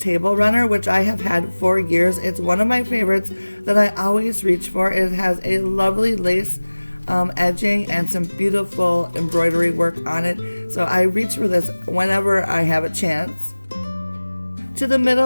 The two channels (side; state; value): both; inverted; correlation -1.00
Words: runner, which I have had for years. It's one of my favorites that I always reach for. It has a lovely lace edging and some beautiful embroidery work on it, so I reach for this whenever I have a chance. To the